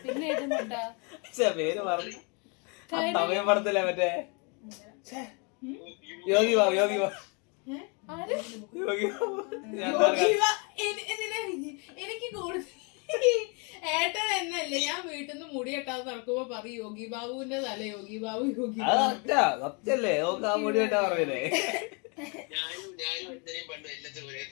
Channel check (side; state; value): right; quieter; 33.6 dB